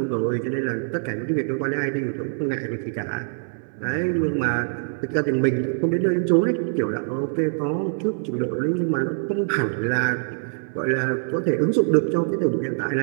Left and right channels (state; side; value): silent; left; 61 dB below the other